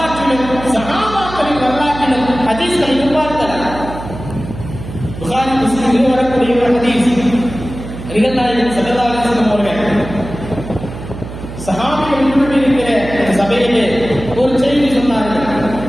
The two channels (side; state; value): right; noise; hum, 11 dB below the sound